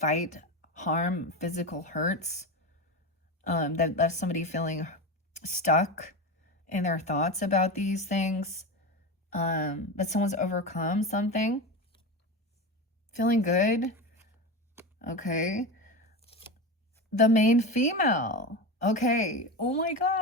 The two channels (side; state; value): both; normal; correlation 0.21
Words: harm, physical hurts. That left somebody feeling stuck in their thoughts about these things. But someone's overcome something. Feeling good. Okay. The main female. Okay. Oh my